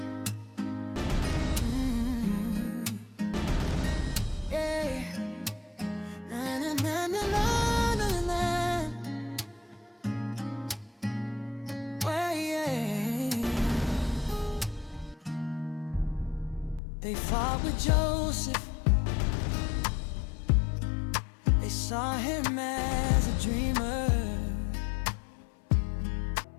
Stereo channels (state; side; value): drops out; right; at 16.8 s